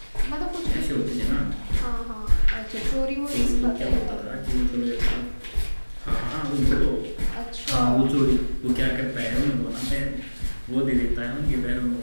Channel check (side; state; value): both; inverted; correlation -1.00